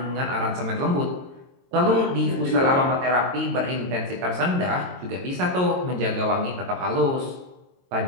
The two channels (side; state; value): left; late; 22 ms